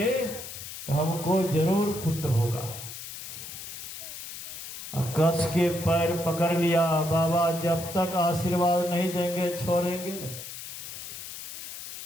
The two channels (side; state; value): left; noise; hiss, 10 dB below the sound